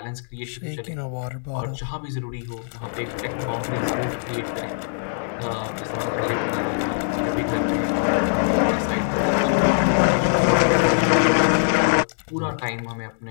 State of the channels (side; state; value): right; silent; digital silence